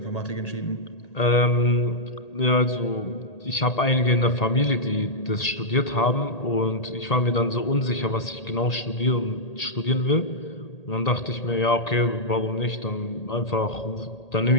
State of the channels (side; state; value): right; late; 1.8 ms